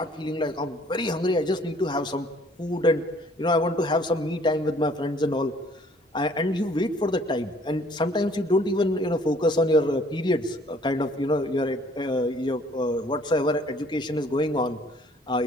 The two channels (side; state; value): both; normal; correlation 0.58